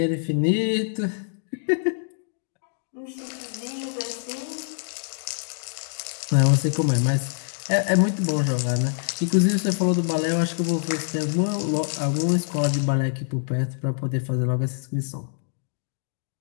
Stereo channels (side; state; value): right; silent; digital silence